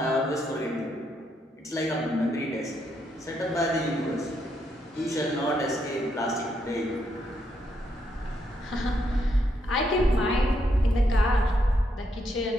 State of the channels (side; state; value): both; normal; correlation 0.77